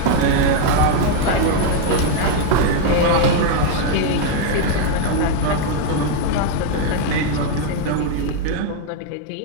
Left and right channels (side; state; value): both; different; correlation 0.00